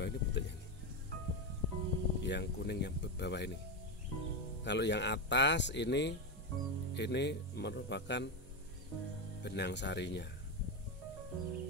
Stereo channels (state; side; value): normal; both; correlation 0.10